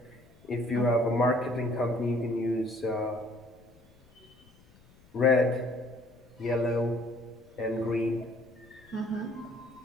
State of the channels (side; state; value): left; noise; rumble, 28 dB below the sound